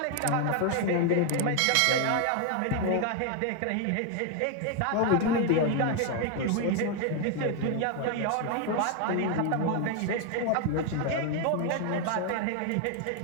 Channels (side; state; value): both; different; correlation 0.01